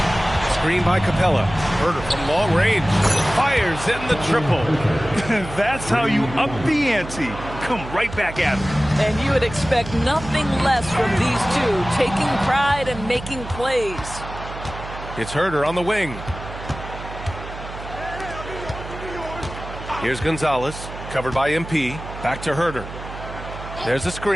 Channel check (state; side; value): noise; right; hum, 11 dB below the sound